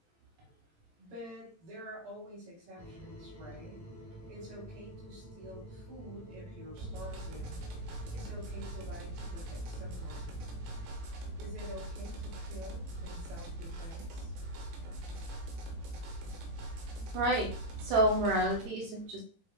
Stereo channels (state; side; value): late; left; 18 ms